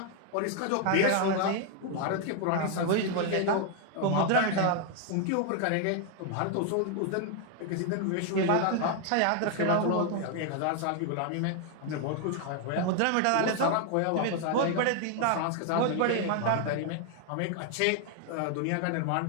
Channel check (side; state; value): both; different; correlation 0.00